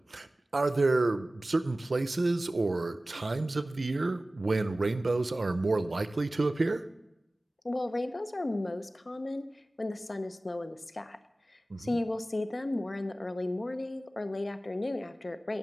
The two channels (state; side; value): normal; both; correlation 0.97